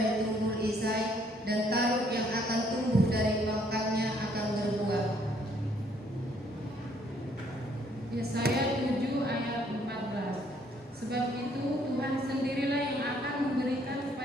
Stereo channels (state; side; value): normal; both; correlation 0.66